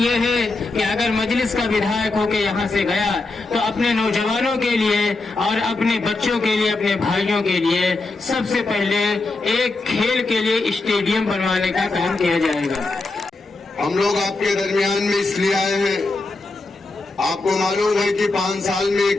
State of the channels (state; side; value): quieter; right; 3.3 dB